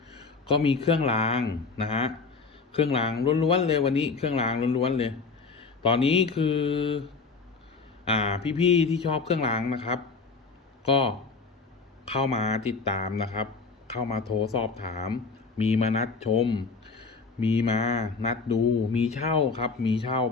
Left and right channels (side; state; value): right; quieter; 4.5 dB